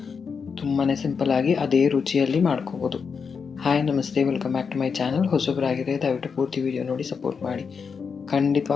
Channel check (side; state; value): right; quieter; 5.9 dB